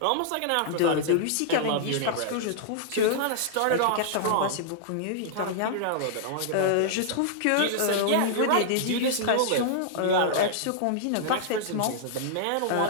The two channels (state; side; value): different; both; correlation -0.01